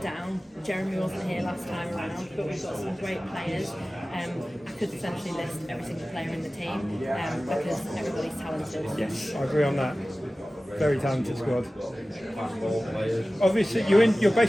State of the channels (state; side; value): normal; both; correlation 0.96